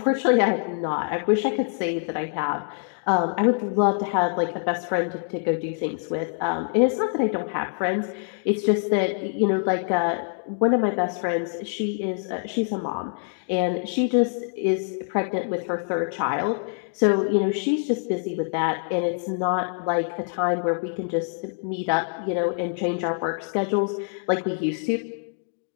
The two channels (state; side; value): silent; right; 61 dB below the other